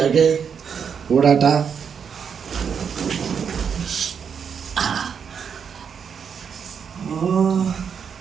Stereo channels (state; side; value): quieter; left; 7.0 dB